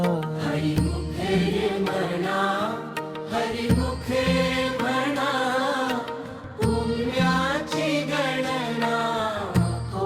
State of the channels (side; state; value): both; identical; correlation 1.00